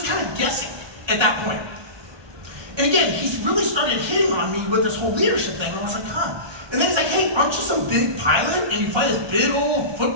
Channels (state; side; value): late; left; 1.2 ms